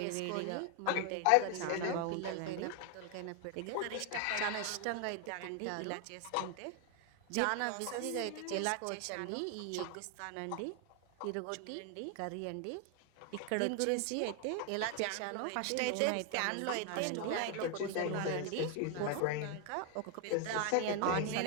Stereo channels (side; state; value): both; different; correlation 0.01